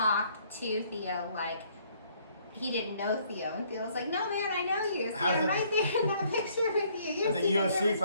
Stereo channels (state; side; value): inverted; both; correlation -0.64